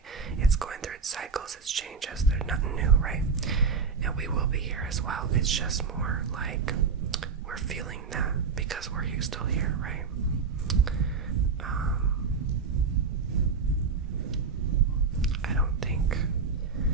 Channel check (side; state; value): left; quieter; 5.3 dB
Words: It's going through its cycles, its changes. There's nothing new, right? And we will be here as well. It's just more like we're feeling that because we're still here, right? I don't think